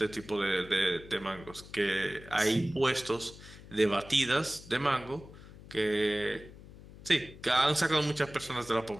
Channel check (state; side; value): noise; left; hum, 18 dB below the sound